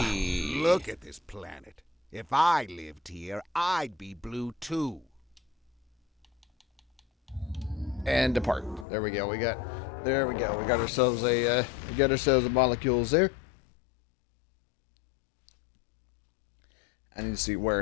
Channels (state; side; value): drops out; right; at 8.8 s